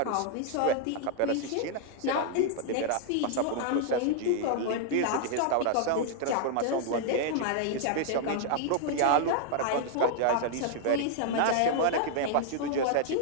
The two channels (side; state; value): both; different; correlation -0.01